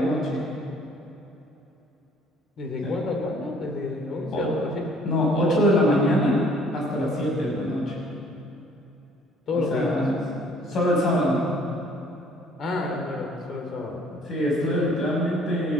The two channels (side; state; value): both; normal; correlation 0.58